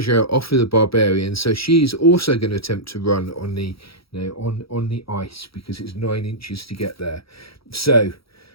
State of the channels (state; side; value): late; right; 0.75 ms